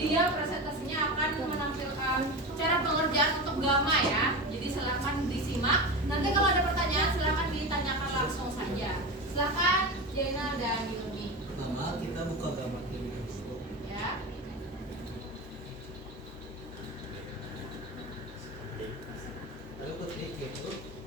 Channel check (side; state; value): both; normal; correlation 0.24